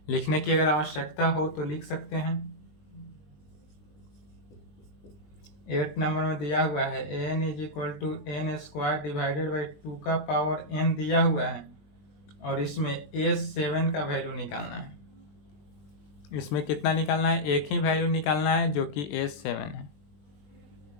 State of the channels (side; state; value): right; late; 20 ms